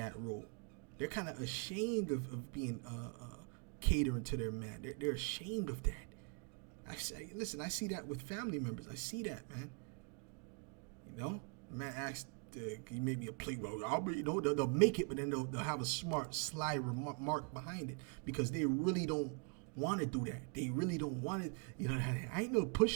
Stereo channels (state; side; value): quieter; left; 37.0 dB